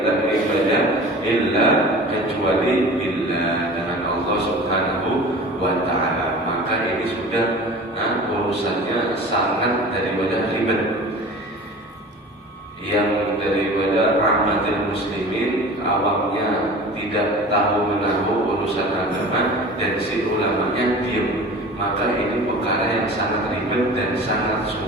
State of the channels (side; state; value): both; normal; correlation 0.39